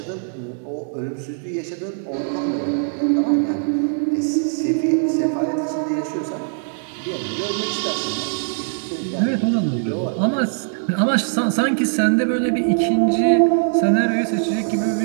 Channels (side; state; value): left; silent; digital silence